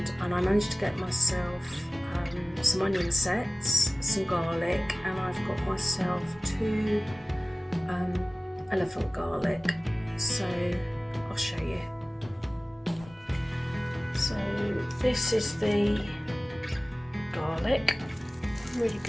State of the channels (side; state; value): both; normal; correlation 0.97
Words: and I managed to get myself some onion sets, some garlic, and I've got myself 2 elephant garlic, so I'll show you. So this is the garlic, really